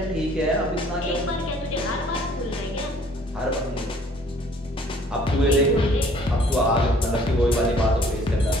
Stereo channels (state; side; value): normal; both; correlation 0.57